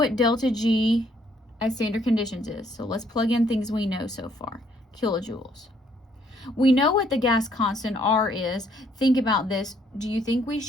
delta G at standard conditions is, so let's plug in things we know so far. Kilojoules. We know what the gas constant R is. Think about this. Do you think we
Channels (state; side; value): normal; both; correlation 0.67